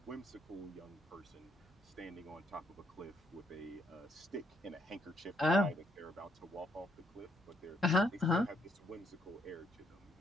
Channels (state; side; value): normal; both; correlation 0.72